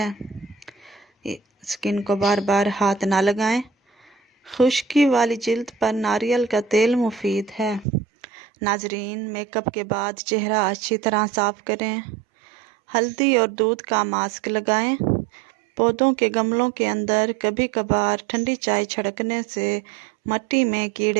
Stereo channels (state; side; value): drops out; left; at 7.9 s